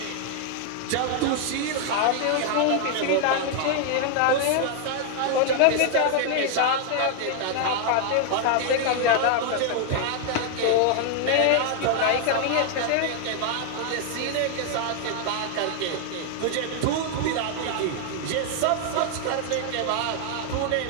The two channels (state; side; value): different; both; correlation 0.00